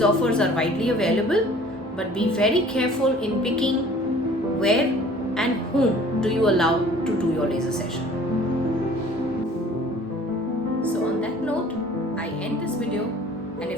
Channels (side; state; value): both; normal; correlation 0.50